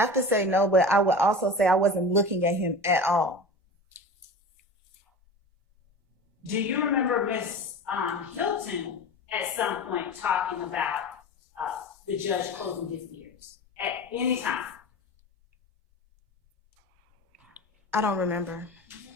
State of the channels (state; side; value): normal; both; correlation 0.33